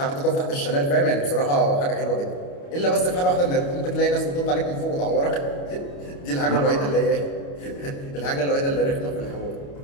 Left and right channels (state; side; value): late; right; 29 ms